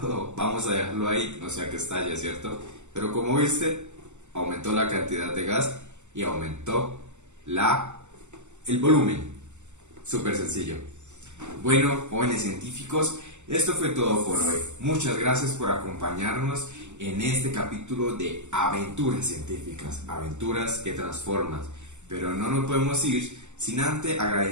Oh, vamos a dejarlo ahí, no sea que estalle, ¿cierto? Pero como viste, aumentó la cantidad de gas y aumentó el volumen. Súper sencillo. Bueno, jóvenes científicos, esto fue todo por hoy. Muchas gracias por acompañarnos en este capítulo de aventuras científicas, aventuras que transforman. Pero no nos podemos ir sin antes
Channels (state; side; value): late; left; 0.84 ms